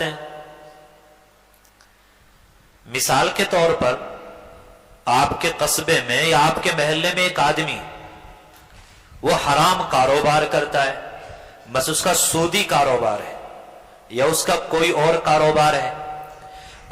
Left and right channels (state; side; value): identical; both; correlation 1.00